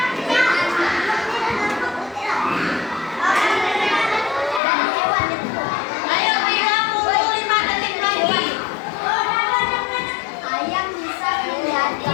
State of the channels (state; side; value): drops out; right; at 4.6 s